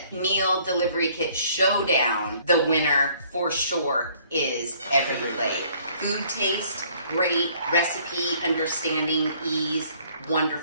Meal Delivery Kit Showdown, the winner for sure is Every Plate. Food taste, great. Recipe, understanding, ease,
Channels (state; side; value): inverted; both; correlation -0.60